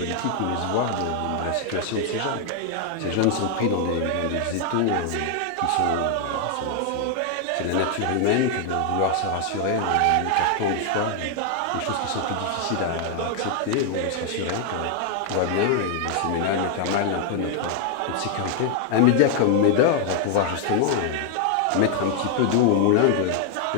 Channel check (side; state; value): both; different; correlation 0.00